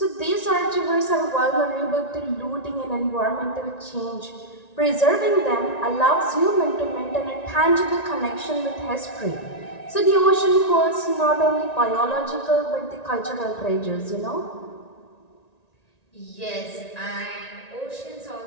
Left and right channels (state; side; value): late; right; 1.9 ms